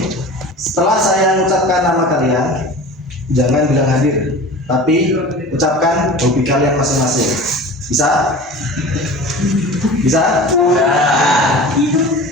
Setelah saya mengucapkan nama kalian, jangan bilang hadir, tapi ucapkan hobi kalian masing-masing. Bisa? Bisa?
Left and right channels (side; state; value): both; normal; correlation 0.37